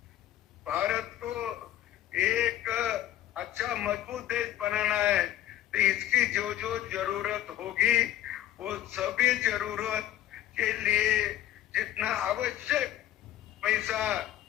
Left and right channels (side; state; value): right; quieter; 12.9 dB